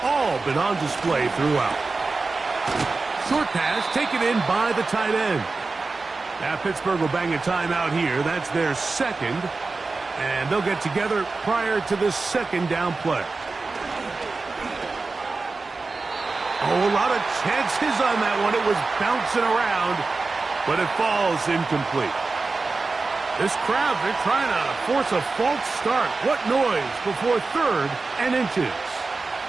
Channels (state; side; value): quieter; left; 3.9 dB